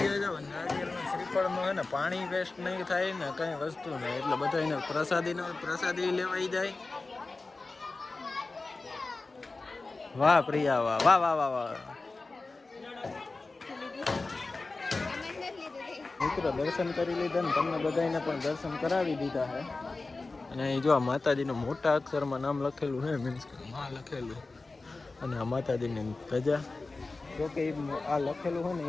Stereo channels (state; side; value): quieter; right; 3.5 dB